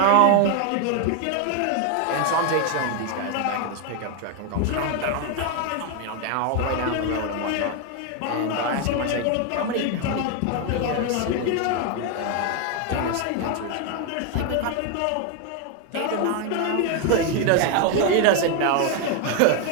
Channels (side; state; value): both; different; correlation 0.01